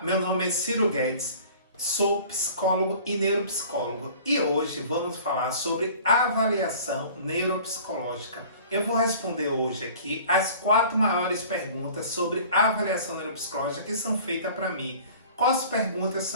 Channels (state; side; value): inverted; both; correlation -0.46